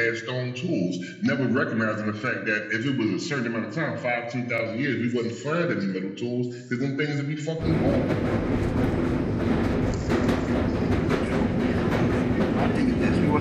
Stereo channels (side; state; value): both; identical; correlation 1.00